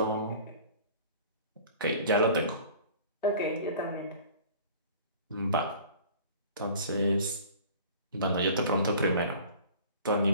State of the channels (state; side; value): inverted; both; correlation -0.44